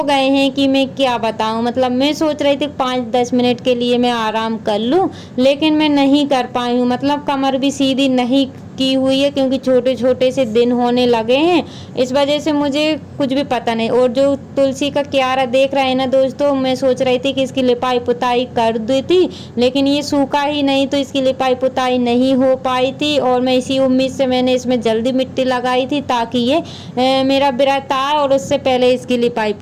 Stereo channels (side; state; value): both; identical; correlation 1.00